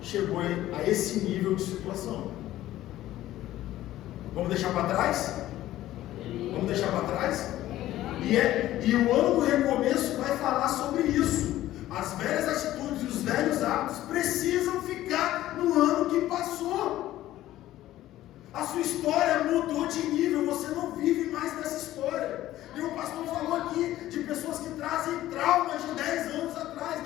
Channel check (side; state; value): right; quieter; 14.4 dB